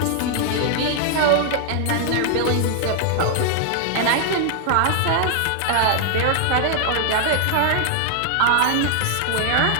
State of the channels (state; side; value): different; both; correlation -0.01